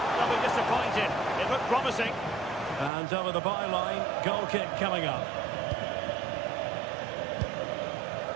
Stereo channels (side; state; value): left; drops out; at 2.9 s